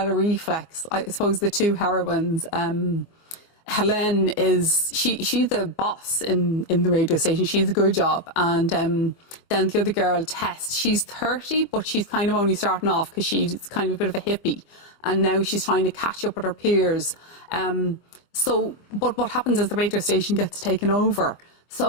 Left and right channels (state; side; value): late; right; 25 ms